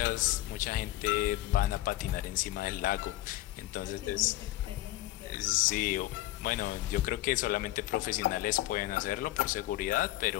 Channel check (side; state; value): right; quieter; 15.8 dB